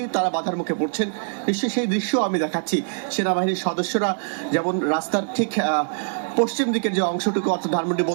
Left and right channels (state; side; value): silent; left; digital silence